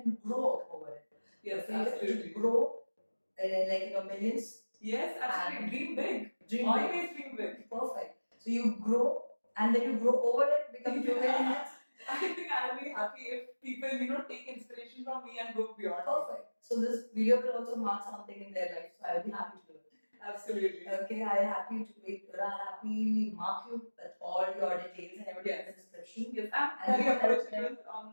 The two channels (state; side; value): inverted; both; correlation -1.00